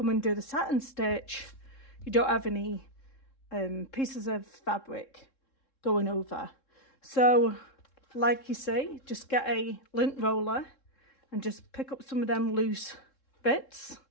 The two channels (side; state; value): right; late; 3.7 ms